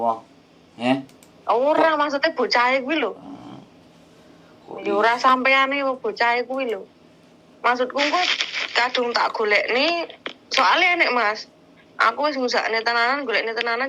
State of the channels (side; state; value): both; identical; correlation 1.00